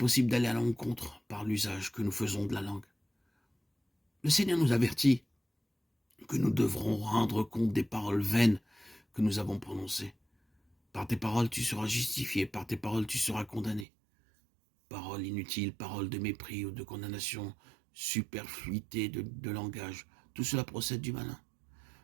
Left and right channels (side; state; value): left; drops out; at 13.9 s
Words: d'aller à l'encontre par l'usage que nous faisons de la langue. Le Seigneur nous avertit que nous devrons rendre compte des paroles vaines que nous avons prononcées. Par tes paroles, tu seras justifié, par tes paroles, tu seras condamné. Paroles inutiles, paroles de mépris ou de condamnation, superfluité de langage, tout cela procède du malin.